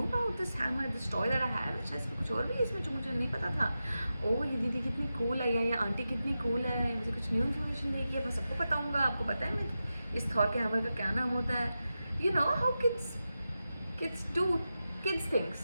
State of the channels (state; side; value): inverted; both; correlation -0.91